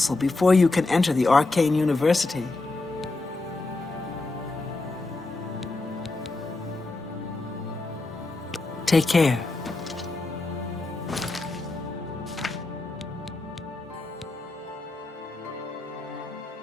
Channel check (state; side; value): quieter; right; 3.2 dB